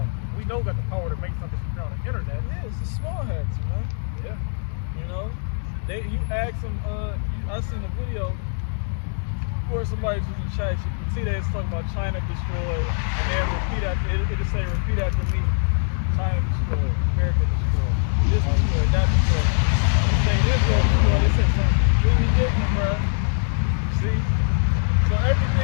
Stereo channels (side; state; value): right; silent; digital silence